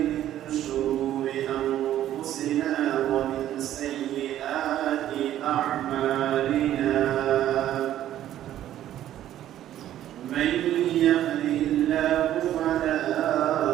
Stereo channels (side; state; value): left; quieter; 12.2 dB